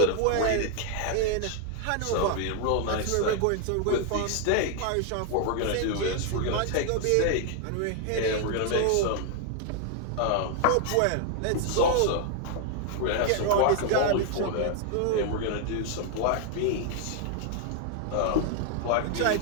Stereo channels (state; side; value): different; both; correlation 0.00